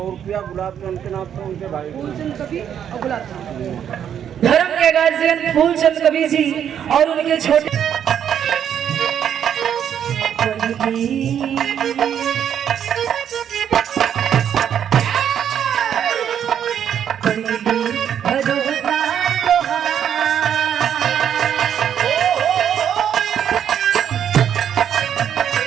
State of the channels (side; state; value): left; quieter; 9.1 dB